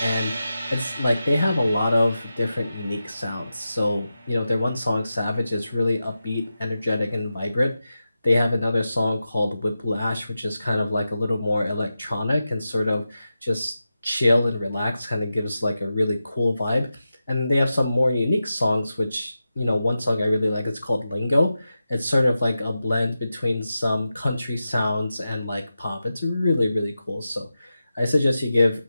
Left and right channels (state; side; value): inverted; both; correlation -0.91